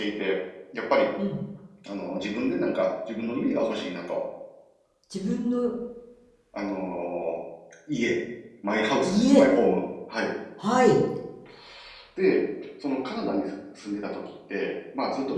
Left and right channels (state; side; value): identical; both; correlation 1.00